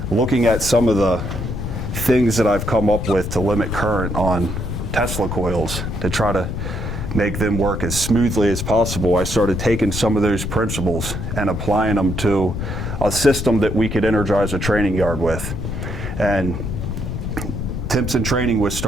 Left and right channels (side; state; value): left; noise; rumble, 4 dB below the sound